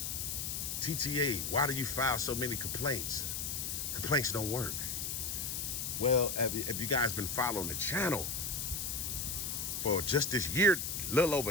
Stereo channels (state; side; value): noise; left; hiss, 3 dB below the sound